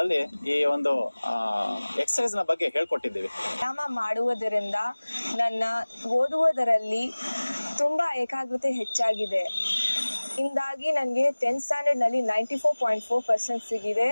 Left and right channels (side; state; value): both; inverted; correlation -1.00